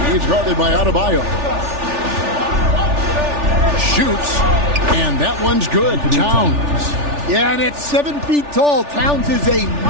He's guarded by Adebayo. Shoots, and that one's good. Towns. Yeah, and at 7 feet tall, Towns is a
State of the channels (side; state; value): left; late; 3.4 ms